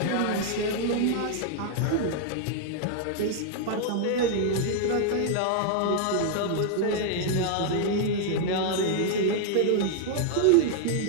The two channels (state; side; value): different; both; correlation 0.00